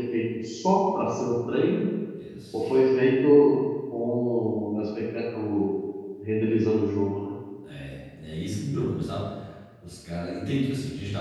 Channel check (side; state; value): both; identical; correlation 1.00